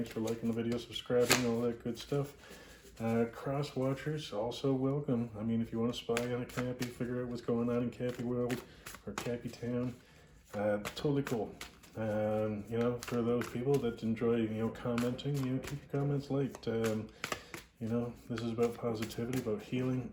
for liking the video, subscribing, all that good stuff. Cross watchers, also welcome. I mean, if you want to spy on a Cappy, figure out what's going on in Cappy World or Cappy Town, totally cool. You know, for those people that enjoy, commenting, keep your comments light. You know, this is about positivity, about healing,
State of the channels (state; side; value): identical; both; correlation 1.00